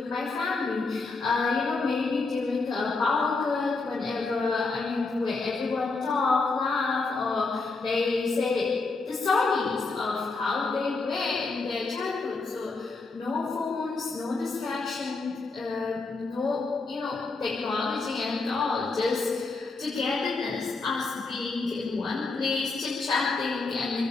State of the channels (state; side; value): quieter; right; 3.9 dB